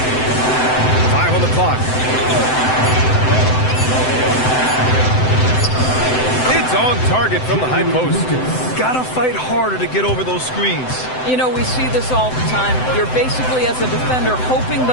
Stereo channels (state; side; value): late; right; 7.8 ms